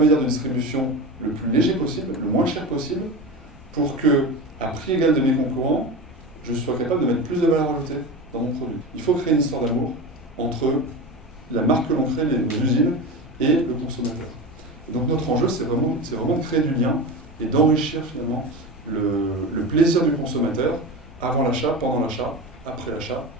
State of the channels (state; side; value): normal; both; correlation 0.26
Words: de distribution le plus léger possible, le moins cher possible, pour que, à prix égal de mes concurrents, je sois capable de mettre plus de valeur ajoutée dans mon produit. Il faut créer une histoire d'amour entre la marque que l'on crée, les usines, et le consommateur. Et donc notre enjeu, c'est vraiment de créer du lien et d'enrichir finalement le plaisir du consommateur avant l'achat, pendant l'achat, après l'achat,